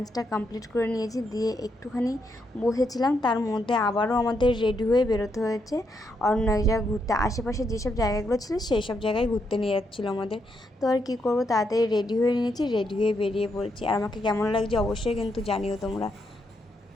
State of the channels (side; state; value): both; normal; correlation 0.79